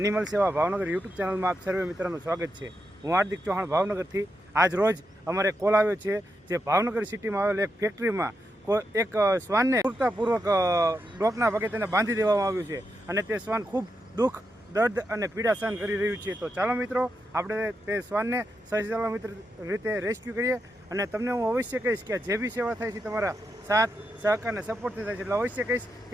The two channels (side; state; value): both; normal; correlation 0.85